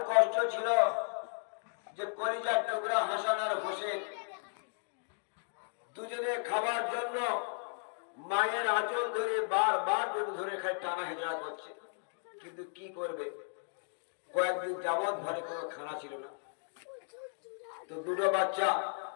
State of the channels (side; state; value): right; silent; 54 dB below the other